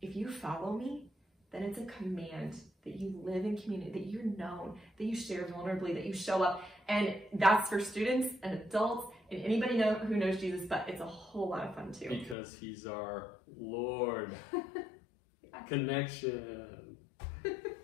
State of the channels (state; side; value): drops out; right; at 12.4 s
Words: if you follow me, then it's a command that you live in community, that you're known, that you share vulnerably, that you show up. And that's for students and adults and anybody who knows Jesus, but it's a whole lot of fun too. Because he's our Lord. Connection.